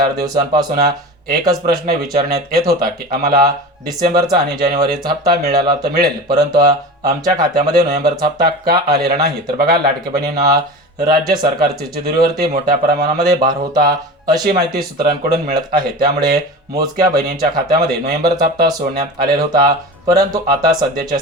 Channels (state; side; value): normal; both; correlation 0.31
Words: दिवसांपासून एकच प्रश्न विचारण्यात येत होता की आम्हाला डिसेंबरचा आणि जानेवारीचा हप्ता मिळाला तर मिळेल, परंतु आमच्या खात्यामध्ये नोव्हेंबरचा हप्ता का आलेला नाही. तर बघा लाडक्या बहिणींना, राज्य सरकारच्या तिजोरीवरती मोठ्या प्रमाणामध्ये भार होता अशी माहिती सूत्रांकडून मिळत आहे. त्यामुळे मोजक्या बहिणींच्या खात्यामध्ये नोव्हेंबरचा हप्ता सोडण्यात आलेला होता. परंतु आता सध्याच्या